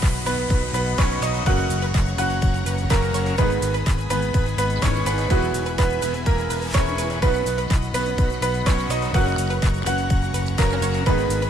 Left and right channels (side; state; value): both; normal; correlation 0.76